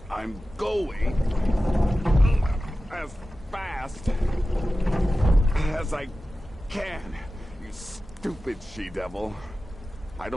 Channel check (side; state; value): both; normal; correlation 0.95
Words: I'm going as fast as I can, you stupid she-devil. I